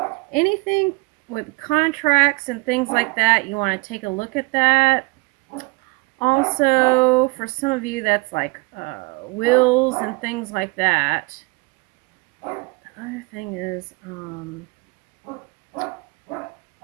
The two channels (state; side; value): quieter; left; 27.5 dB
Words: anything with contracts and things like that, you want to take a look at that. Also, for some of you, that's like wills and things like that. The other thing is,